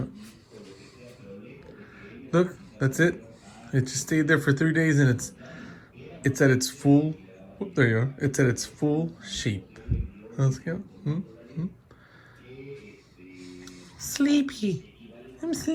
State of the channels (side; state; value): both; identical; correlation 1.00